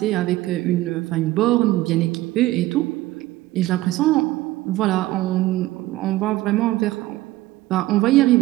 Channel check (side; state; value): left; quieter; 17.0 dB